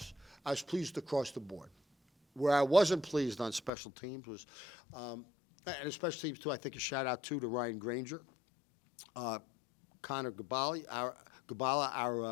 I was pleased across the board. Where I wasn't pleased on special teams was, and special teams too, I think a shout out to Ryan Granger, Connor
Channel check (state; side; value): drops out; right; at 3.7 s